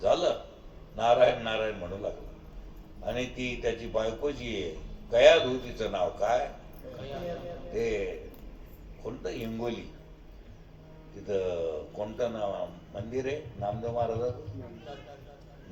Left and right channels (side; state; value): both; identical; correlation 1.00